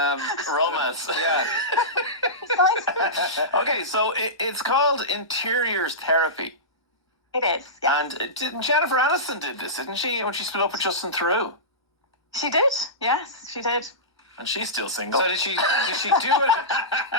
romance. Yeah. Okay, so it's called interiors therapy. It is, yeah. And Jennifer Aniston did this, didn't she, when she split up with Justin Theroux? She did, yes, she did. And she's still single. So did she do it?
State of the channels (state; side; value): late; right; 1.2 ms